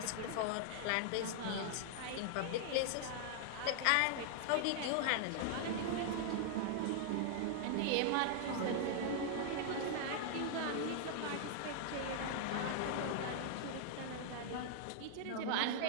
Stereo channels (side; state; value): both; different; correlation -0.01